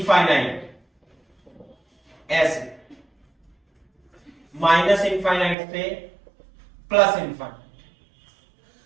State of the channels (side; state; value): left; drops out; at 5.6 s